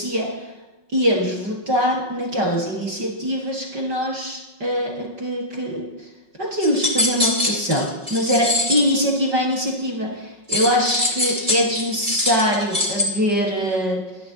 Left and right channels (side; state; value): left; late; 5.4 ms